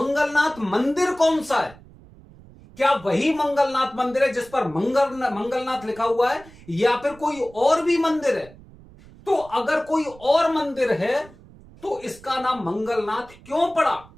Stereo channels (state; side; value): noise; right; rumble, 22 dB below the sound